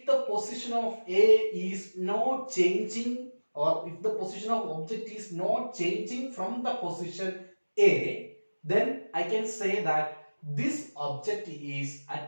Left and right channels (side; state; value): both; inverted; correlation -1.00